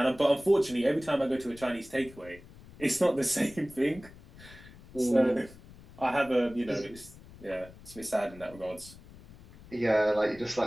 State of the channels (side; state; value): left; noise; rumble, 20 dB below the sound